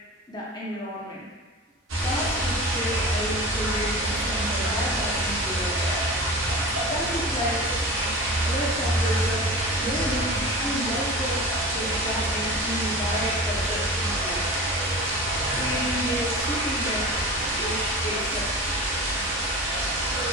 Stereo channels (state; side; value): normal; both; correlation 0.32